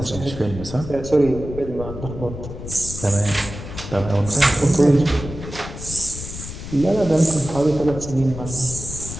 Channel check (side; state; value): left; noise; rumble, 10 dB below the sound